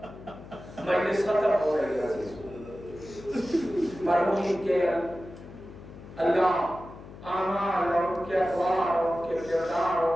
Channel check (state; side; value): noise; left; hum, 16 dB below the sound